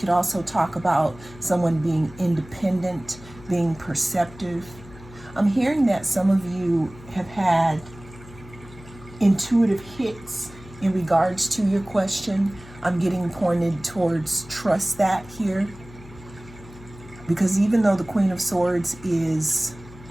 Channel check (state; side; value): noise; left; hum, 19 dB below the sound